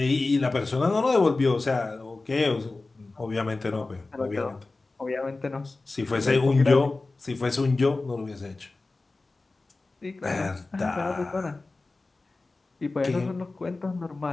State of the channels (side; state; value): right; quieter; 3.4 dB